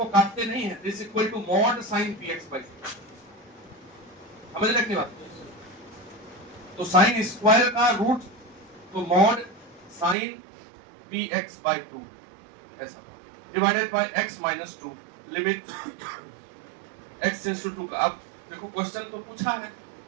काटते नहीं है, this equal to mod sine px by 2। समझ रहे की बात? तो साइन स्क्वायर का रूट तो मॉड साइन px बाय 2 ऐसा divided by x minus 2, limit x tends to 2 का। अब देखो क्वेश्चन तो पूछा है,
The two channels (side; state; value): left; drops out; at 10.2 s